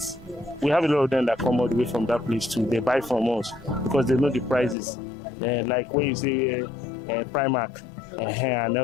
We have a lot of them that come all the way from that place too. They buy from us because they know the prices. Like when you say Primark and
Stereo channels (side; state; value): right; drops out; at 4.8 s